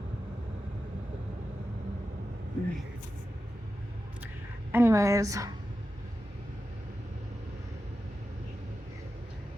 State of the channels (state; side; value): normal; both; correlation 0.92